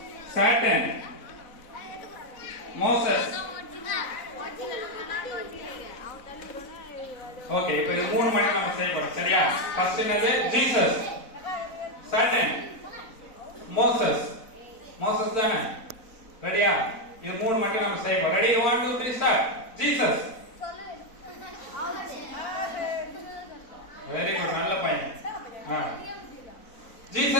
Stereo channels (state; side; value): late; right; 4.0 ms